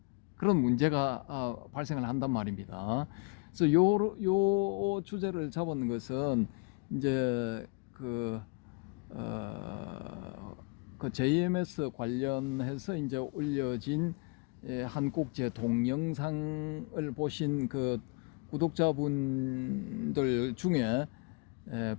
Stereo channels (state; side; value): quieter; right; 31.1 dB